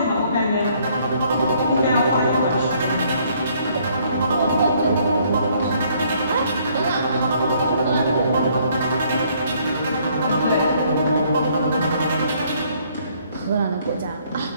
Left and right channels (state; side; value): inverted; both; correlation -0.65